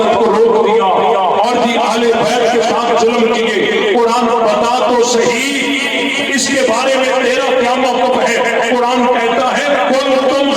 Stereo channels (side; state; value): both; identical; correlation 1.00